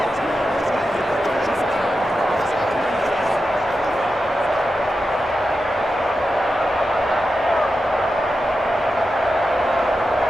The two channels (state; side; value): normal; both; correlation 0.90